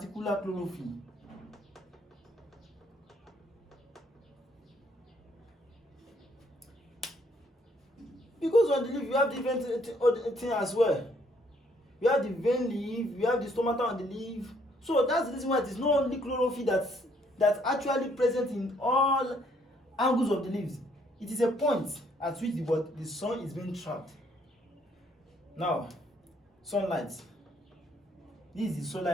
chlorophyll. Because on the leaf you have different things as well. You have the vein leaf, you have the stomata on the leaf. So that's the reason why it is not only chlorophyll that's actually present in all angles of the leaves. It is a point at which the sun is being trapped. Now, sunlight. This is the solar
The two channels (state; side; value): normal; both; correlation 0.67